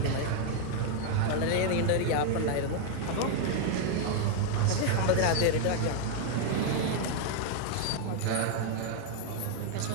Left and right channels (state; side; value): different; both; correlation 0.00